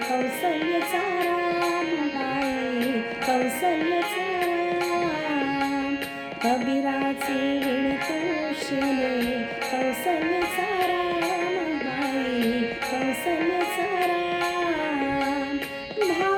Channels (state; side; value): identical; both; correlation 1.00